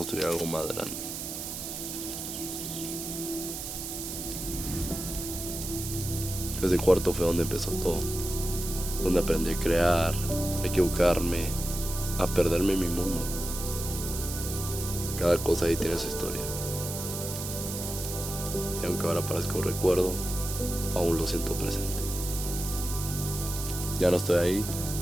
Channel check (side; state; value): right; noise; hiss, 6 dB below the sound